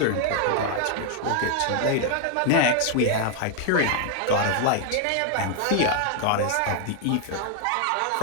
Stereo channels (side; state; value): both; different; correlation 0.00